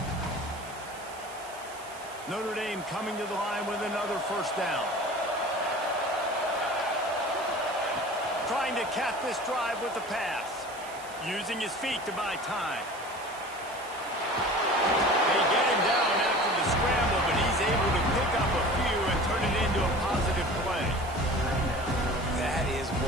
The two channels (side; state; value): right; noise; hiss, 18 dB below the sound